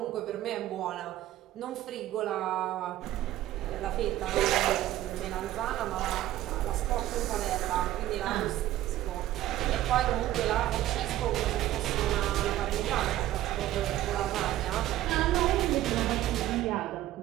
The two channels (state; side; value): quieter; left; 14.3 dB